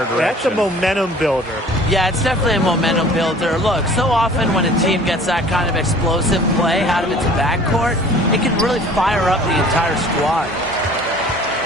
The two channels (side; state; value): both; normal; correlation 0.49